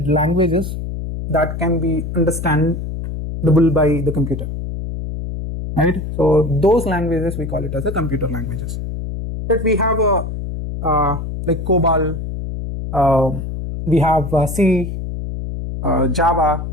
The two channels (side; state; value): left; noise; hum, 6 dB below the sound